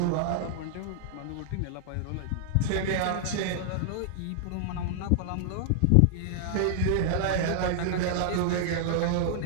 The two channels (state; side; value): different; both; correlation -0.01